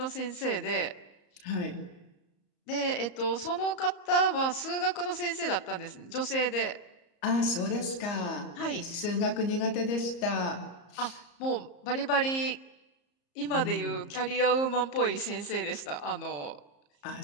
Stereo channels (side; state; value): right; late; 34 ms